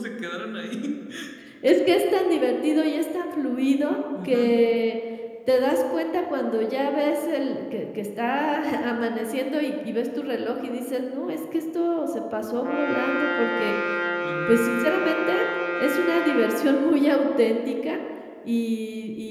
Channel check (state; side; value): identical; both; correlation 1.00